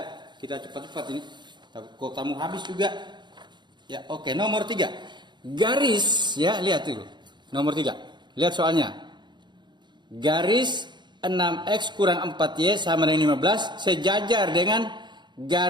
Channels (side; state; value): left; late; 0.22 ms